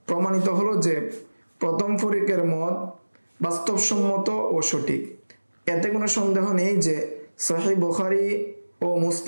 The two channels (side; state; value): both; inverted; correlation -1.00